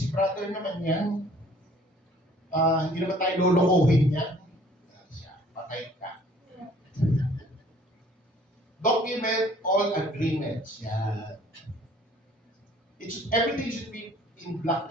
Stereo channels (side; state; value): both; normal; correlation 0.55